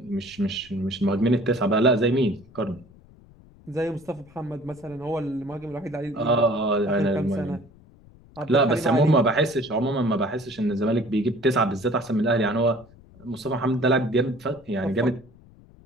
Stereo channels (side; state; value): left; noise; rumble, 25 dB below the sound